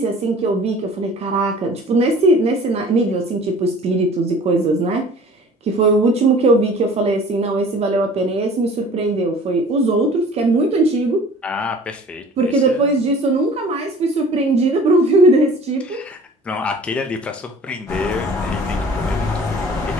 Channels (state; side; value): normal; both; correlation 0.47